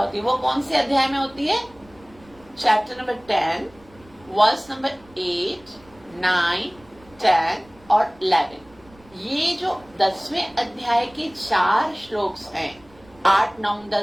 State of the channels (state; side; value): noise; right; rumble, 27 dB below the sound